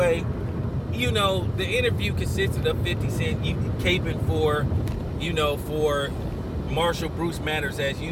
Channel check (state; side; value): identical; both; correlation 1.00